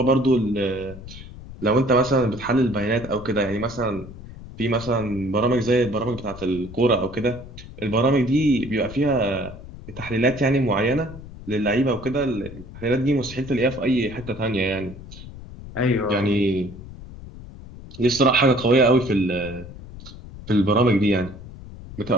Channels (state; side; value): noise; left; rumble, 15 dB below the sound